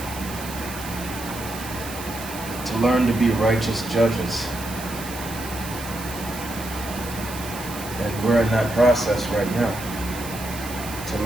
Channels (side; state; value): right; noise; hiss, 12 dB below the sound